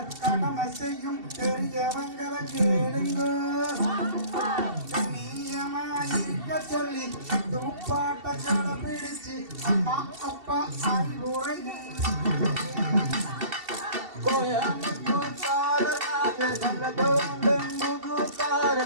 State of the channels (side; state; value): left; late; 2.7 ms